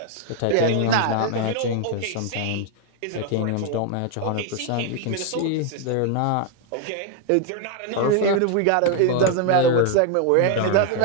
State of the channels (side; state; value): both; different; correlation 0.00